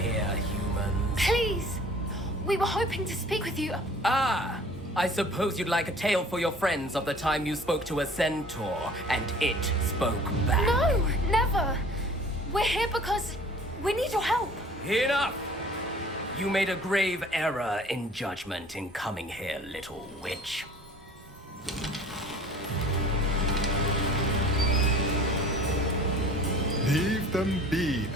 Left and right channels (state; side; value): normal; both; correlation 0.48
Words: humans? Please! We were hoping to speak with you. Ah! I suppose you'd like a tale for your friends of the time you spoke to a centaur, and it spoke back. No! Never! We're here because we need your help. Enough! You made a grave error in judgment in coming here, little witch. Leave them be,